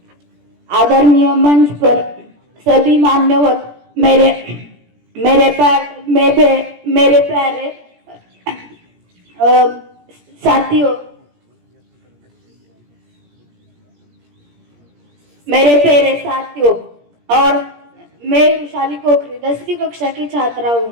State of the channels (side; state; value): left; late; 17 ms